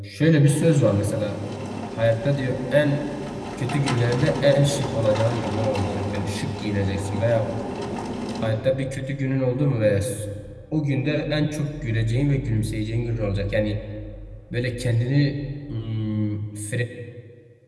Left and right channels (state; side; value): identical; both; correlation 1.00